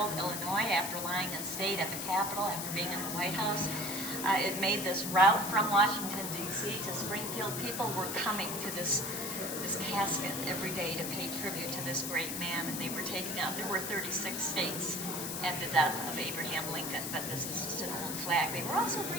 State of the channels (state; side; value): noise; left; hiss, 4 dB below the sound